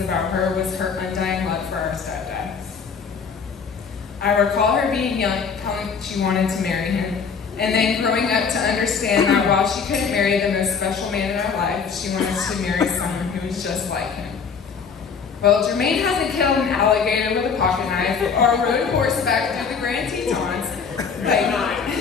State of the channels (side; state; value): right; quieter; 5.9 dB